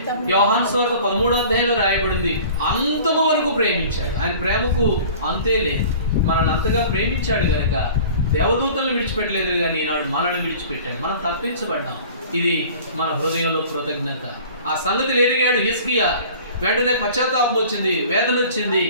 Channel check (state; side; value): inverted; both; correlation -0.45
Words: యోహాను సువార్త 13వ అధ్యాయంలో రాయబడింది, అంతము వరకు ప్రేమించాడు. ఆయన ప్రేమకు అంతే లేదు. మనల్ని అంతగా ప్రేమించాడు కనుక దేవదూతలను విడిచిపెట్టలేదు, కానీ ఈనాడు మనల్ని విడిచిపెట్టాడు. మనం తప్పించబడ్డాం. ఇది మన హృదయంలో కృతజ్ఞత. ఆ సంగతి ఎరిగాడు హిజ్కియా. వెంటనే పశ్చాత్తాపం వచ్చింది, వేదన వచ్చింది.